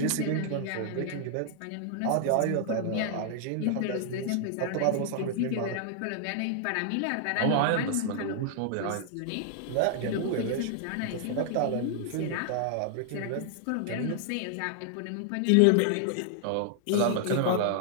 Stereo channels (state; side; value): different; both; correlation 0.00